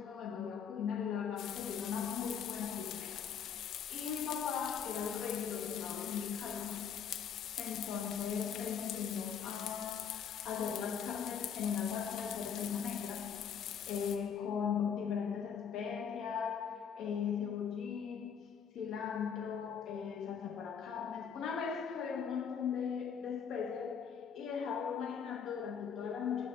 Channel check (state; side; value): quieter; right; 7.4 dB